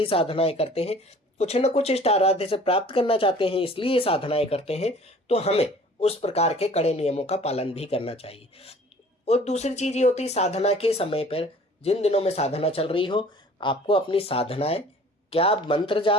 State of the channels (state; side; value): normal; both; correlation 0.50